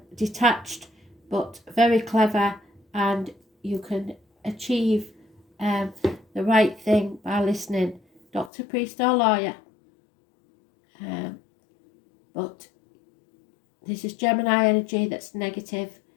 detached but very clever, and you can achieve the right thing by listening. Doctor, priest or lawyer. But this is Gemini energy that's negative.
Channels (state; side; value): drops out; right; at 8.5 s